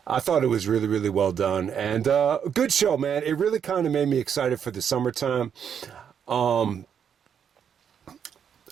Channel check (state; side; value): quieter; left; 8.0 dB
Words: I thought it was really, really well done, and a good show, man. It really kind of made me excited for the summertime.